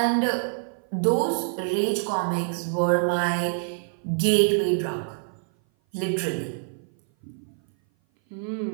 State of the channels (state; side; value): silent; left; 57 dB below the other